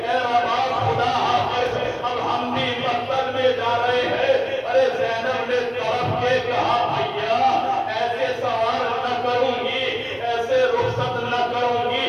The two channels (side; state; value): both; identical; correlation 1.00